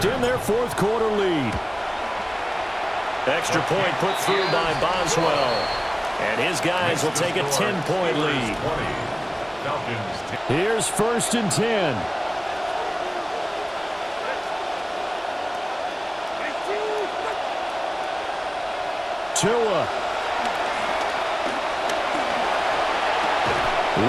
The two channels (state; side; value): identical; both; correlation 1.00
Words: their fourth quarter lead. Extra point put through by Boswell. And his guys will take a 10-point lead. Here's 1st and 10. Tua.